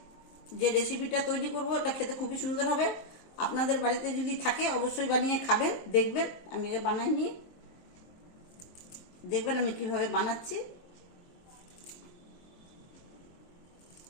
যে রেসিপিটা তৈরি করব, এটা খেতে খুবই সুন্দর হবে। আপনাদের বাড়িতে যদি থাকে অবশ্যই বানিয়ে খাবেন, দেখবেন আমি বানাই নিয়ে দেখবেন আমি কিভাবে বানাচ্ছি।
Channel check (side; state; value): right; late; 23 ms